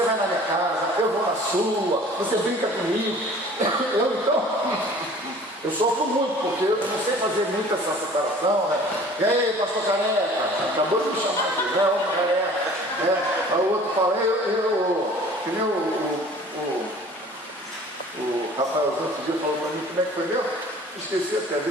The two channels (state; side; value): normal; both; correlation 0.48